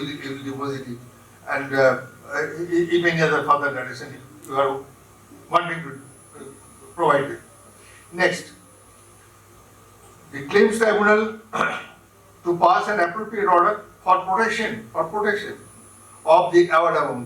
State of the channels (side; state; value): both; identical; correlation 1.00